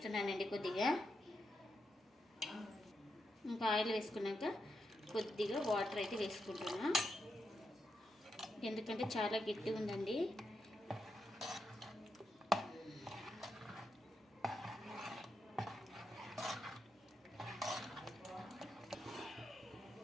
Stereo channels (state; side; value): normal; both; correlation 0.84